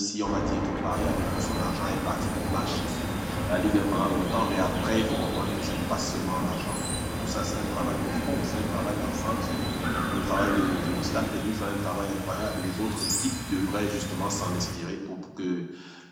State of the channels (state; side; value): identical; both; correlation 1.00